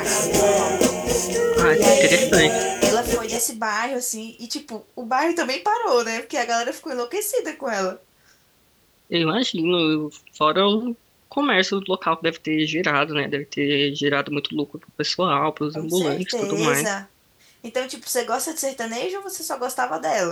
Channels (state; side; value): identical; both; correlation 1.00